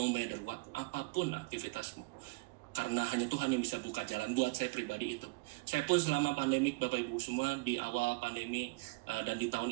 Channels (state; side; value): quieter; left; 26.7 dB